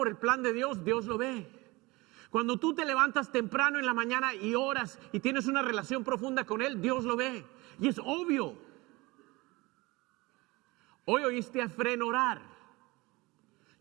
el plan de Dios, Dios lo ve. Cuando tú te levantas temprano en la mañana y oras y tienes una relación profunda con Él, Dios lo ve. Y es obvio. Hoy oíste a Efrén orar.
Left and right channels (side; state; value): left; quieter; 22.8 dB